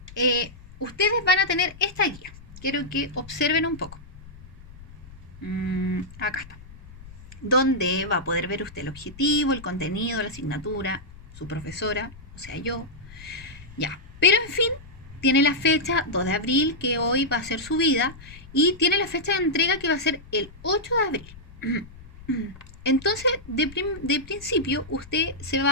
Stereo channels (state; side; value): noise; left; rumble, 19 dB below the sound